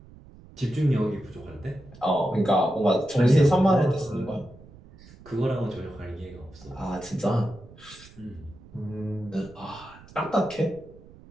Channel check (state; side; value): noise; right; rumble, 21 dB below the sound